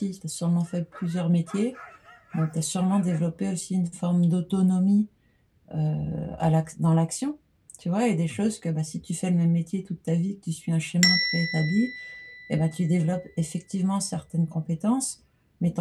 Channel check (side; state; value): both; identical; correlation 1.00